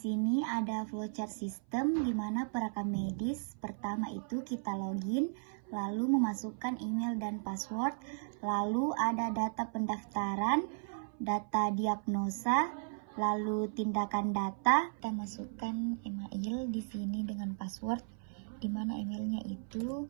ada flowchart sistem di mana perekam medis pertama itu kita login, lalu memasukkan email dan password, lalu ada data pendaftaran, data diagnosa, lalu tindakan data. Kita masukkan email di sini dengan password, di mana emailnya itu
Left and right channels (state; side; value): silent; left; 54 dB below the other